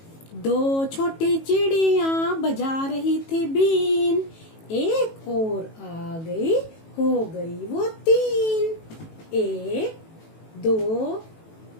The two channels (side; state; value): right; late; 18 ms